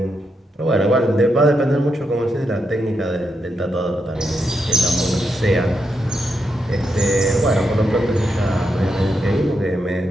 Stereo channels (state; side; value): normal; both; correlation 0.83